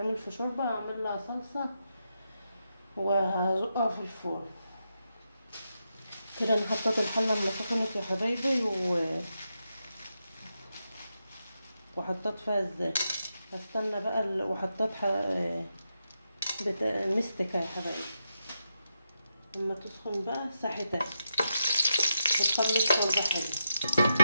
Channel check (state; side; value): inverted; both; correlation -0.85